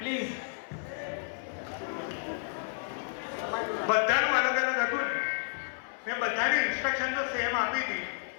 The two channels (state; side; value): silent; right; 57 dB below the other